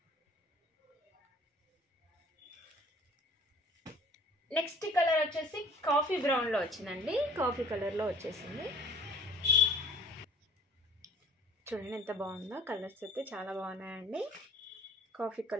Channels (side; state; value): both; normal; correlation 0.49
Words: నెక్స్ట్ కలర్ వచ్చేసి కాఫీ బ్రౌన్లో వచ్చిందండి, కాఫీ కలర్లో వచ్చేసింది. చూడండి ఎంత బాగుందో. కలర్స్ అయితే చాలా బాగున్నాయండి. కాఫీ